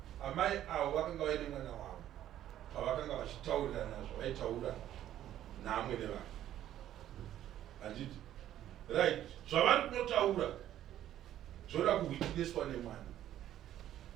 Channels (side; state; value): left; quieter; 12.0 dB